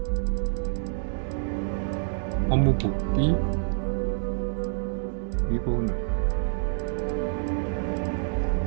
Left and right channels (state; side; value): silent; left; digital silence